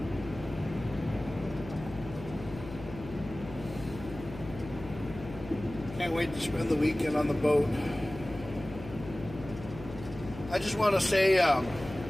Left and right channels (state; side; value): noise; left; hum, 13 dB below the sound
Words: Can't wait to spend the weekend on the boat. I just want to say